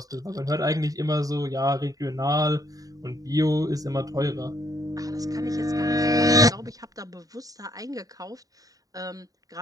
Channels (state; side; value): late; left; 0.18 ms